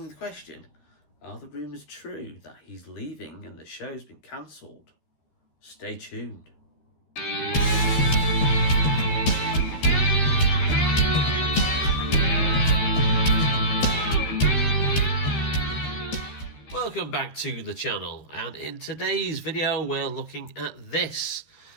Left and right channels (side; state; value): right; late; 13 ms